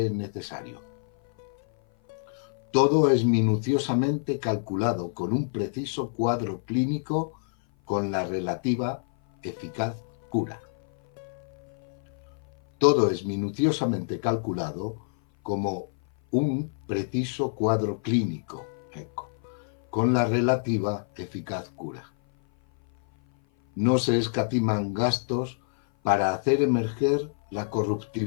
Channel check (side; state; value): right; silent; 56 dB below the other